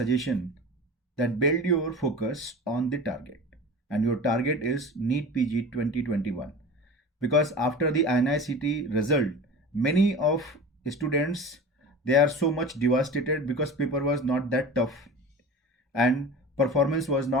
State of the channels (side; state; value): both; normal; correlation 0.34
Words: that build your focus on the target, and your target is NEET PG 2021, because after the INICT result many of students, they are so much devastated because paper was not that tough and performance was